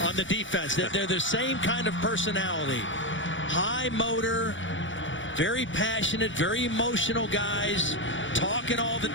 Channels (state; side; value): late; right; 0.56 ms